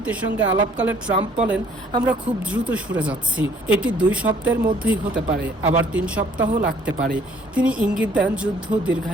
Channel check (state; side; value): normal; both; correlation 0.60